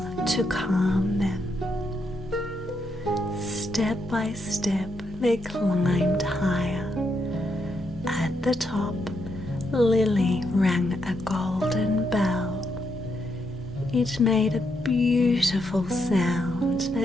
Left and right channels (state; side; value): normal; both; correlation 0.80